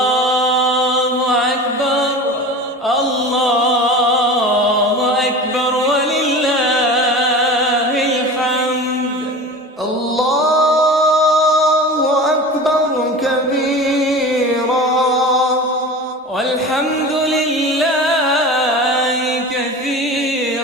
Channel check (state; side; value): normal; both; correlation 0.34